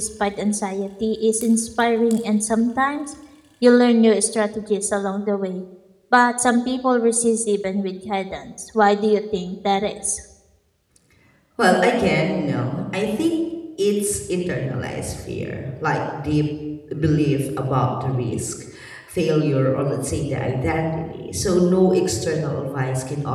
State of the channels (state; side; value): identical; both; correlation 1.00